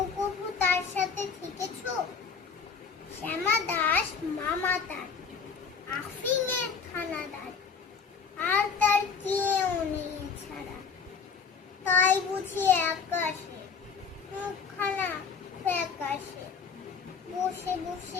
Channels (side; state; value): right; quieter; 5.8 dB